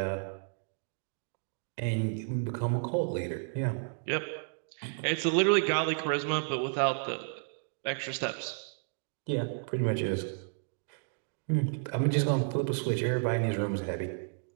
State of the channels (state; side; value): silent; left; digital silence